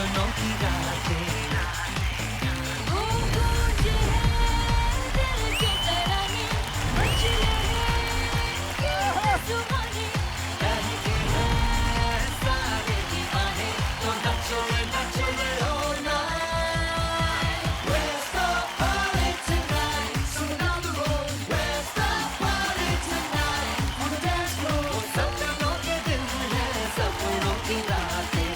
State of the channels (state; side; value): identical; both; correlation 1.00